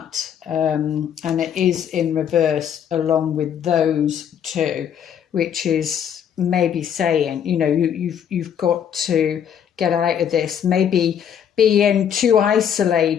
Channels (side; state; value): right; quieter; 8.7 dB